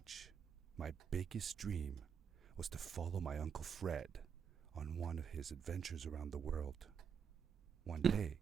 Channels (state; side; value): quieter; left; 7.2 dB